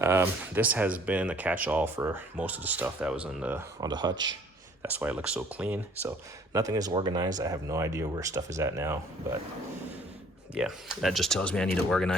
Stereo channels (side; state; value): both; normal; correlation 0.56